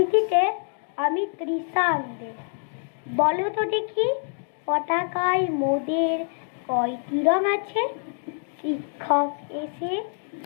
আমি কৃষাণ দে। বলো তো দেখি পতাকায় মোদের কয়টি রং আছে? শিক্ষক এসে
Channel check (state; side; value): silent; right; 55 dB below the other